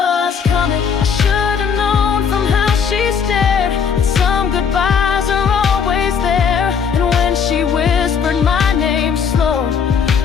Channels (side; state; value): right; quieter; 6.7 dB